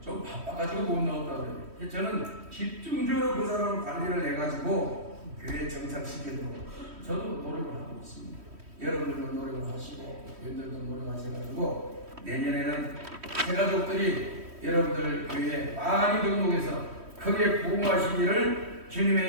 좀 바빠가지고 못 나왔다고 그래요. 저는 집중적으로 그 사람을 관리를 해가지고 교회에 정착시키도록 저도 노력을 하고 있습니다. 여러분들도 노력을 하시고 여러분들도 노력하셔가지고 내년에는 새가족들이 여러분들 교회에 많이 등록해서 크게 부흥하시기를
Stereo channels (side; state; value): left; late; 3.1 ms